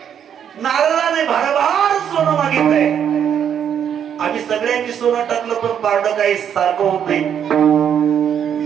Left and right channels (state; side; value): quieter; left; 8.7 dB